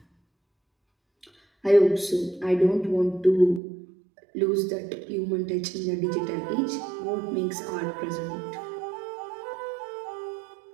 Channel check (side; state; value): left; drops out; at 3.6 s